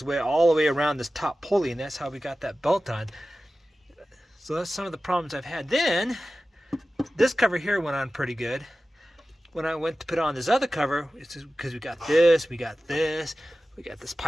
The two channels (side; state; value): both; normal; correlation 0.95